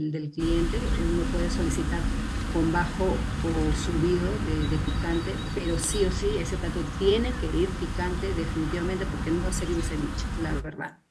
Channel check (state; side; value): identical; both; correlation 1.00